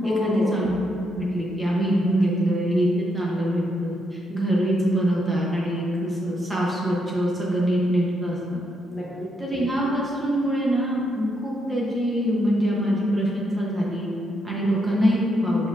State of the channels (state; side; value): normal; both; correlation 0.78